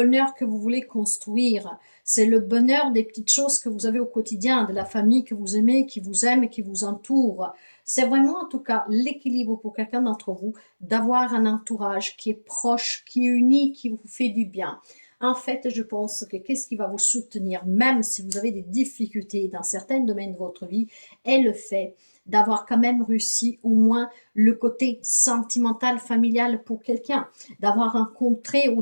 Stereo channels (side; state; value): both; inverted; correlation -1.00